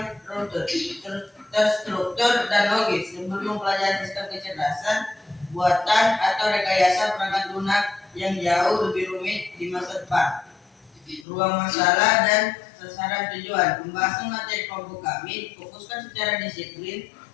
terstruktur dan logis sebelum mempelajari sistem kecerdasan buatan atau rekayasa perangkat lunak yang jauh lebih rumit di masa depan. Ruang masalah dan sasaran tujuan. Pembahasan materi kelompok kami fokuskan secara disiplin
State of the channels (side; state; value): right; drops out; at 11.2 s